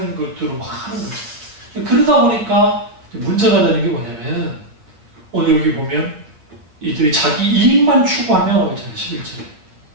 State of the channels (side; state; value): left; late; 8.6 ms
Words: 것들을 막 하는 거죠. 그러다 보니까 문제가 되는 게 뭐냐면, 오늘 여기 보면 이들이 자기 이익만 추구하며 있잖아요. 11절에